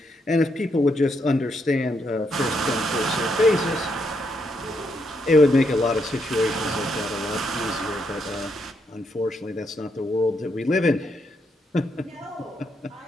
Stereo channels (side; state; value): both; normal; correlation 0.78